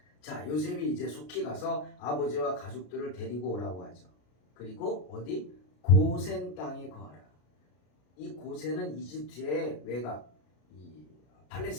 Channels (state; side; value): late; right; 33 ms